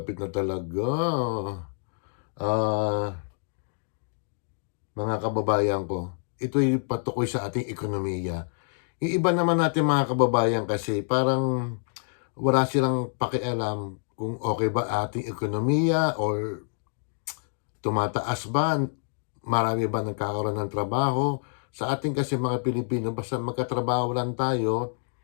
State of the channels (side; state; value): right; silent; 60 dB below the other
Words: na talaga. Mga kababayan ko, ito'y patukoy sa ating ekonomiya. Yung iba naman natin mga kababayan kasi parang wala silang pakialam kung okay ba ating ekonomiya or tumataas ba, marami ba nagkakaroon ng trabaho. Sa ating kasi mga Pilipino, basta magkatrabaho lang tayo,